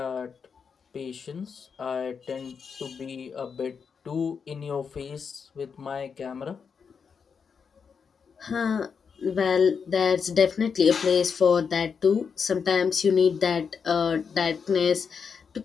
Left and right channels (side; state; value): right; quieter; 6.1 dB